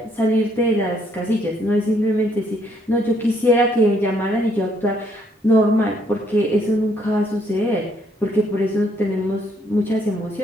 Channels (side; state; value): both; normal; correlation 0.69